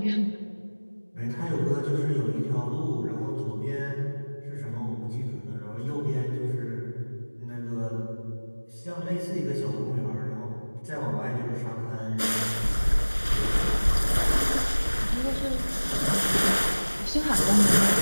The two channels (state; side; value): inverted; both; correlation -1.00